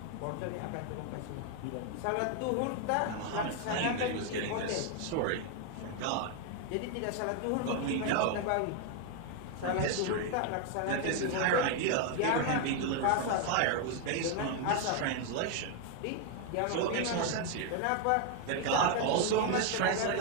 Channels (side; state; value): both; different; correlation 0.01